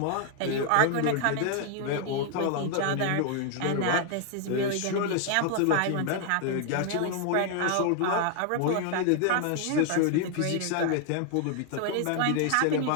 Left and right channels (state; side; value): different; both; correlation 0.00